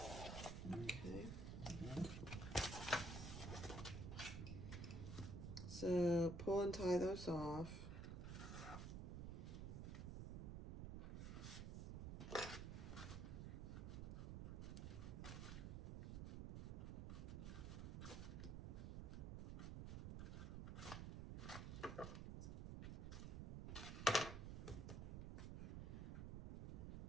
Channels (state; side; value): noise; right; rumble, 4 dB below the sound